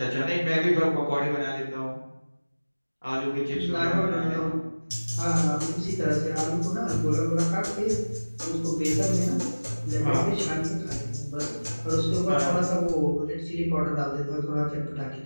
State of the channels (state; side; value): inverted; both; correlation -1.00